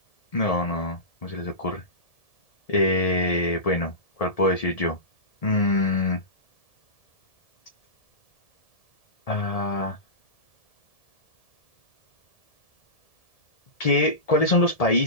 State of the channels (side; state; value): right; late; 1.7 ms